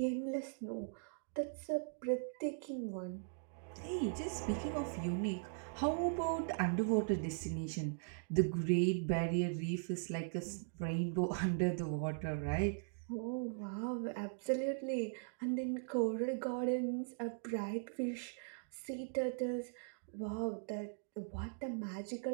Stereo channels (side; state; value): left; silent; digital silence